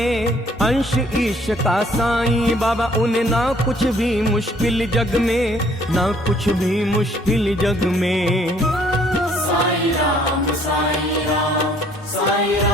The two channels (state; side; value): normal; both; correlation 0.61